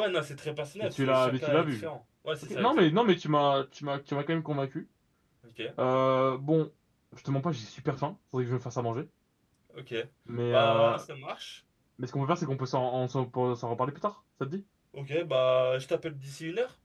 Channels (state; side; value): identical; both; correlation 1.00